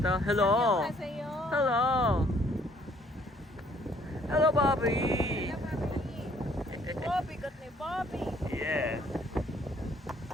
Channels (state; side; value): normal; both; correlation 0.62